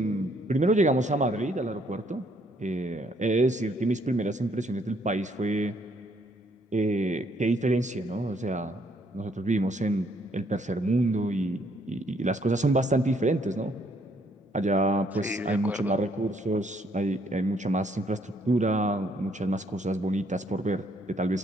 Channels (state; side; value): normal; both; correlation 0.68